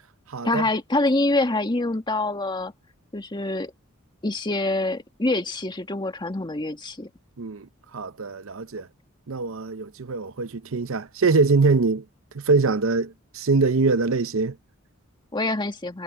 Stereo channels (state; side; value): normal; both; correlation 0.26